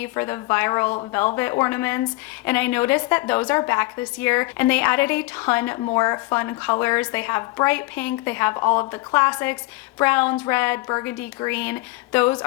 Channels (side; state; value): right; quieter; 21.1 dB